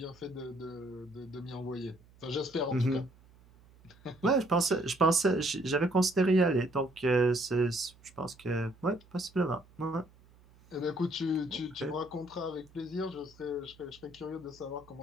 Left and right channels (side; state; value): right; noise; hum, 27 dB below the sound